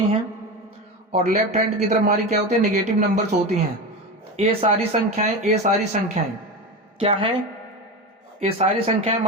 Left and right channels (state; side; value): normal; both; correlation 0.23